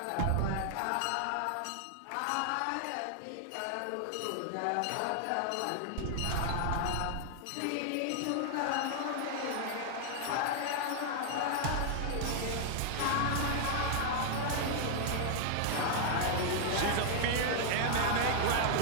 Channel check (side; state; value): both; different; correlation 0.00